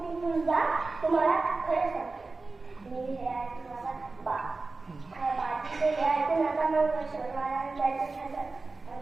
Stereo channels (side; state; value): left; quieter; 3.7 dB